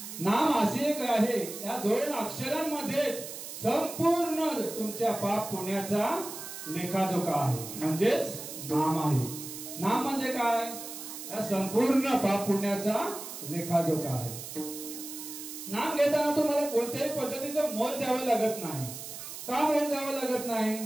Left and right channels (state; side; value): noise; right; hiss, 10 dB below the sound